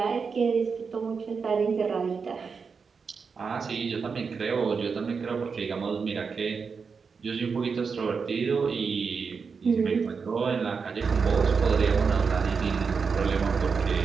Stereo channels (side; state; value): left; quieter; 5.4 dB